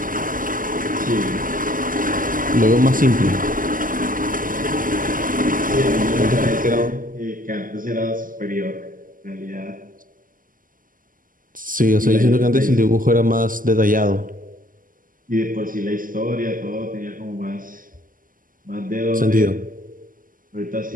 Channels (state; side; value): late; left; 0.40 ms